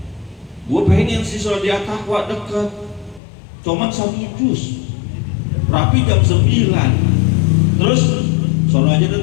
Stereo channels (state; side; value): drops out; right; at 3.2 s